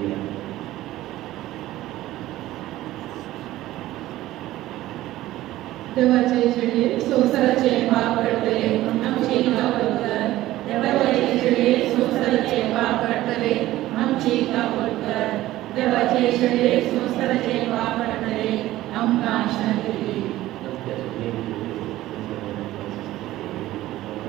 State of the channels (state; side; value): quieter; left; 15.6 dB